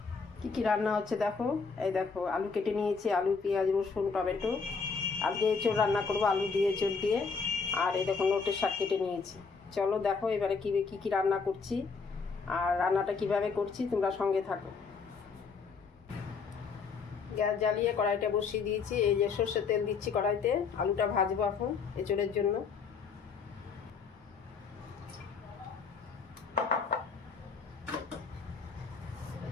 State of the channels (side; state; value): right; quieter; 5.2 dB